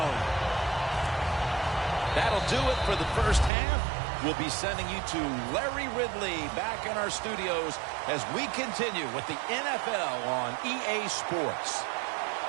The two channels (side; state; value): left; drops out; at 3.5 s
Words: That'll do it for the first half. We'll be sending you to Larry Ridley back in our studios as we continue with the NFL on EA Sports.